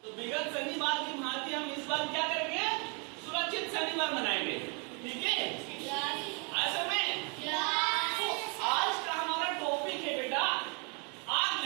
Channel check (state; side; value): quieter; left; 35.2 dB